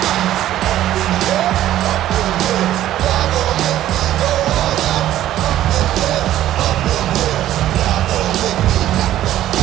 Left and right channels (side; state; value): left; quieter; 13.0 dB